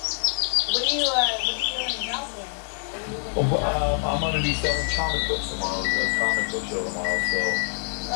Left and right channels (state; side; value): silent; right; 62 dB below the other